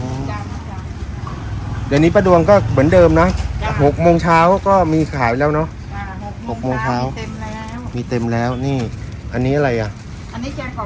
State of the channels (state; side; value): identical; both; correlation 1.00